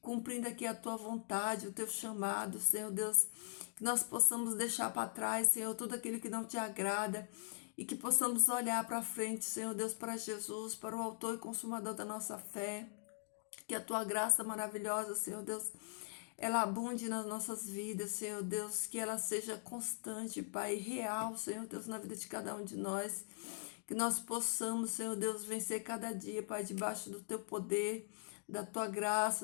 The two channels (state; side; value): silent; right; digital silence